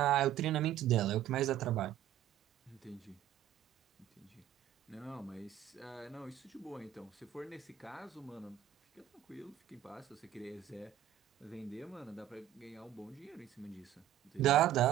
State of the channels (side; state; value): left; quieter; 11.8 dB